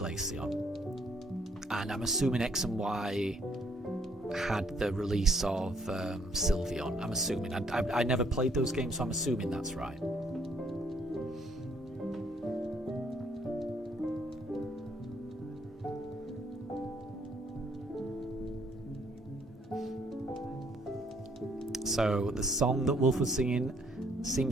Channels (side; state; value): both; normal; correlation 0.67